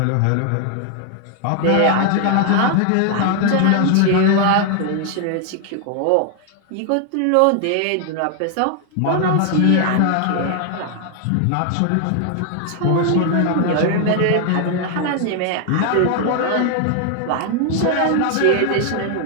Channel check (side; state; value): both; different; correlation 0.00